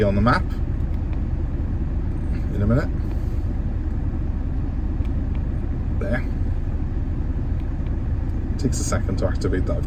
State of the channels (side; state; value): both; identical; correlation 1.00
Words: on the map. In a minute. There. It takes a second to activate that.